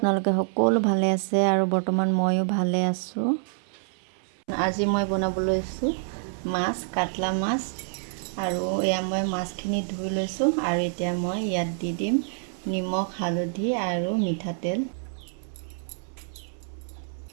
সকলো ভালে আছে আৰু বৰ্তমান ময়ো ভালে আছোঁ। আজি মই বনাব লৈছোঁ মাছ, কাটলা মাছ। আৰু এয়া মই মাছখিনি ধুই লৈছোঁ আৰু এতিয়া মই ইয়াত দি দিম নিমখ, হালধি আৰু মিঠাতেল।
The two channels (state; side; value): silent; left; 60 dB below the other